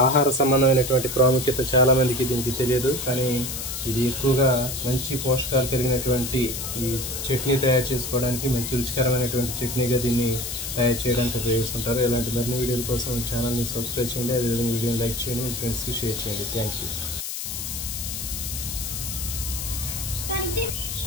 సంబంధమైనటువంటి ప్రాముఖ్యత చాలామందికి దీనికి తెలియదు. కానీ ఇది ఎక్కువగా మంచి పోషకాలు కలిగినటువంటి ఈ చట్నీ తయారు చేసుకోవడానికి, మంచి రుచికరమైనటువంటి చట్నీగా దీన్ని తయారు చేయడానికి ఉపయోగిస్తుంటారు. ఇలాంటి మరిన్ని వీడియోల కోసం ఛానల్ని సబ్స్క్రైబ్ చేయండి. అదేవిధంగా వీడియోని లైక్ చేయండి, మీ ఫ్రెండ్స్కి షేర్ చేయండి. Thank you.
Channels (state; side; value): noise; left; hiss, 5 dB below the sound